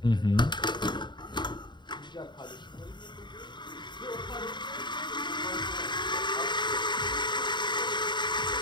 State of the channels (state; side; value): late; right; 0.22 ms